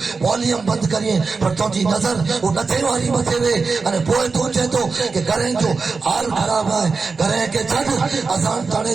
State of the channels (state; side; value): quieter; left; 4.5 dB